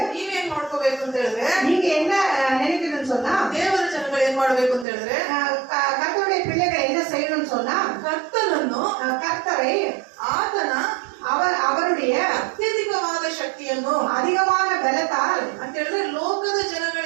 ನೀವೇನ್ ಮಾಡ್ಕೋಬೇಕು ಅಂತ ಹೇಳಿದ್ರೆ, நீங்க என்ன நினைக்கணும்னு சொன்னா, ದೇವರ ಜನಗಳು ಏನ್ ಮಾಡ್ಬೇಕು ಅಂತ ಹೇಳಿದ್ರೆ, கர்த்தருடைய பிள்ளைகள் என்ன செய்யணும்னு சொன்னா, ಕರ್ತನನ್ನು, கர்த்தரை, ಆತನ அவருடைய ಅತ್ಯಧಿಕವಾದ ಶಕ್ತಿಯನ್ನು, அதிகமான பலத்தால் ಅಂತ ಹೇಳಿದ್ರೆ ಲೋಕದ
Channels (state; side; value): drops out; left; at 4.9 s